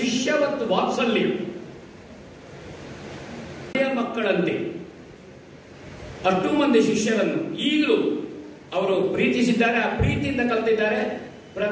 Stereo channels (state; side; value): identical; both; correlation 1.00